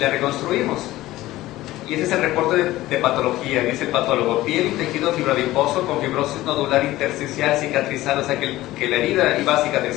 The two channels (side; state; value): right; quieter; 16.6 dB